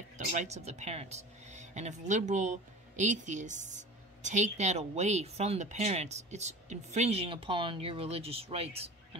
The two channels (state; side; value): normal; both; correlation 0.37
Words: the rights of the parents. And if liberal atheists take that away from the parents, it's infringing upon your religious rights